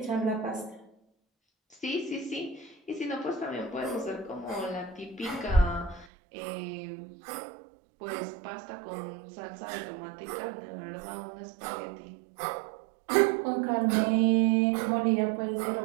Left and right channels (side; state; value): left; drops out; at 6.1 s